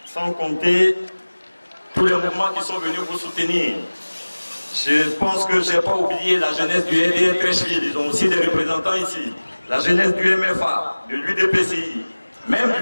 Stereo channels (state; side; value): inverted; both; correlation -1.00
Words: Sans compter tous les mouvements qui sont venus vous soutenir. Je pense que je n'ai pas oublié la jeunesse du LDR Treichville, ils ont aussi des représentants ici. La jeunesse du MFA, de l'UDPCI, même